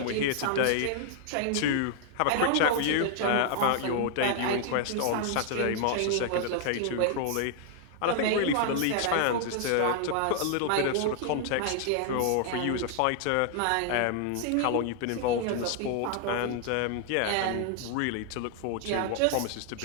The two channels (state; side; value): different; both; correlation 0.00